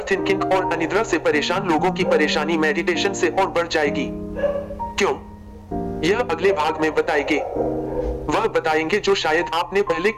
और अनिद्रा से परेशान लोगों की परेशानी मेडिटेशन से और बढ़ जाएगी। क्यों? यह अगले भाग में बताएंगे। वह बताएंगे जो शायद आपने पहले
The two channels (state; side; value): identical; both; correlation 1.00